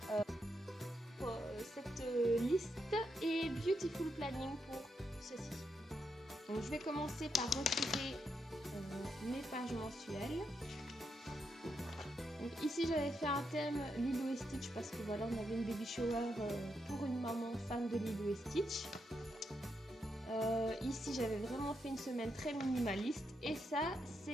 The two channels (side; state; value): both; normal; correlation 0.82